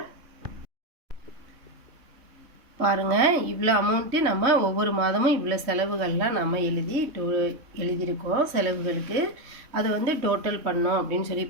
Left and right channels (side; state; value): left; late; 3.1 ms